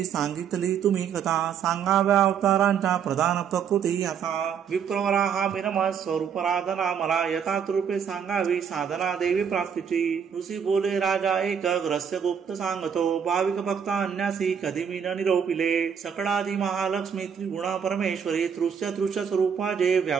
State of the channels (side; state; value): left; quieter; 7.5 dB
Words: सांगितली तुम्ही कथा सांगाव्या अवतारांच्या प्रधान प्रकृती असा विप्रवरा हा विनमत स्वरूपराधना मला यथार्थ रूपे सांगावी साधना देवी प्राप्तीची। ऋषी बोले राजा एक रहस्य गुप्त सांगतो भाविक भक्त अन्यासी कधी मी न निरोपिले सकळादी महालक्ष्मी त्रिगुणा परमेश्वरी तृष्य स्वरूपा जे